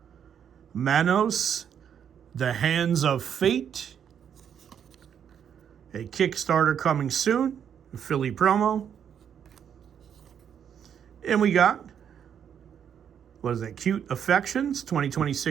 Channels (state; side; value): quieter; left; 8.4 dB